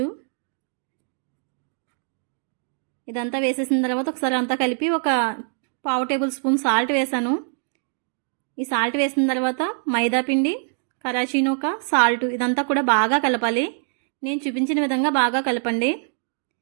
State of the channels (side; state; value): left; silent; 63 dB below the other